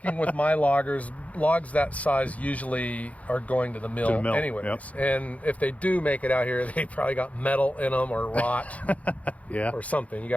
with my loggers, logs that size usually are going to the mill, anyways. Yep. And if they do make it out here, they probably got metal in them or rot or something. You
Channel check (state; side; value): late; right; 0.068 ms